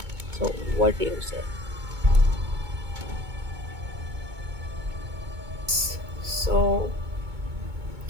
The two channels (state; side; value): late; left; 2.2 ms